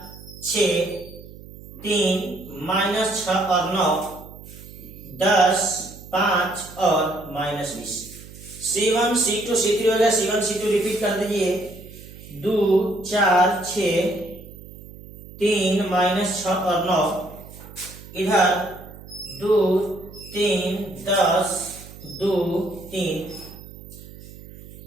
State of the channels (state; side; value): noise; right; hum, 17 dB below the sound